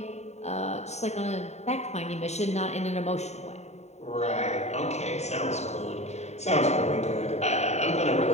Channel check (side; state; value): right; late; 0.32 ms